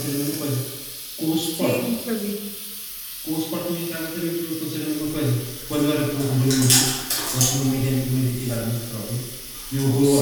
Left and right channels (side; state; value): both; identical; correlation 1.00